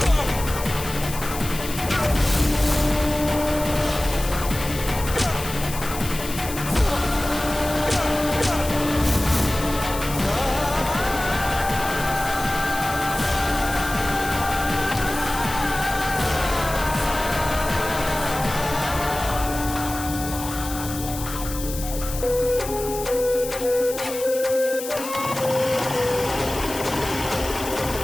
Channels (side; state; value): left; noise; hiss, 10 dB below the sound